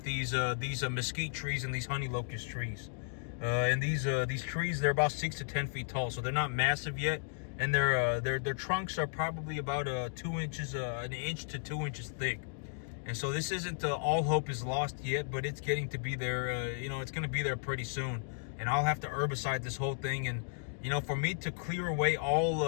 these mesquite trees and these honey locust trees. And these trees, they're about 6 to 10 feet tall, so they're not massive yet, and their trunks are probably about an inch to 2 inches thick. And so this isn't all hope is lost yet, but it's getting to be there. It's going to be there pretty soon, and I'll have to herbicide this whole thing. And for me to clear away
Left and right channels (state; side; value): silent; right; digital silence